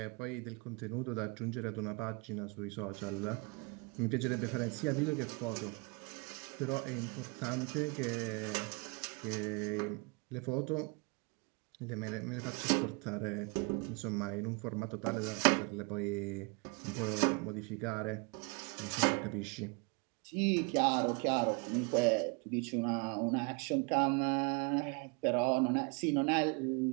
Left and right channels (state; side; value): quieter; left; 31.0 dB